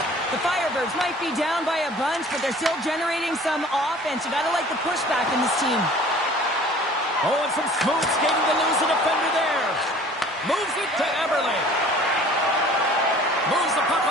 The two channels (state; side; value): normal; both; correlation 0.49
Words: The Firebirds might be down by a bunch, but they're still generating some offense. You gotta like the pushback in this team. Oh, and some smooth skating to lose a defender there. Moves it to Eberle. Moves the puck